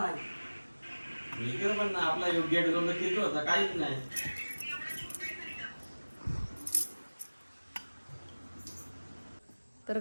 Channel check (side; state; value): both; inverted; correlation -1.00